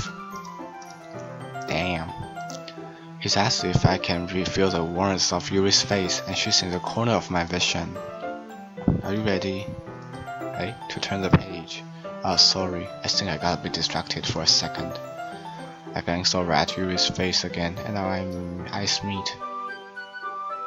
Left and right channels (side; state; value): both; identical; correlation 1.00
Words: Damn. It's as if I can feel the warmth of Yuri's face and she's in the corner of my vision. Are you ready? Hey, to turn the page. Oh, sorry, I think I got a bit distracted for a second. I glanced over at Yuri's face again, and now our eyes meet.